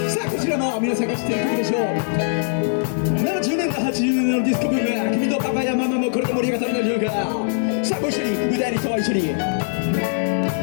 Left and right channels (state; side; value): silent; right; 65 dB below the other